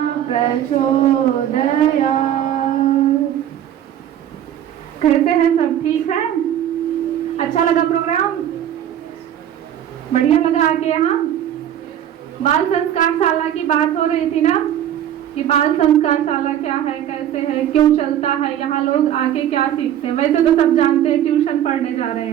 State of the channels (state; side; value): quieter; left; 10.7 dB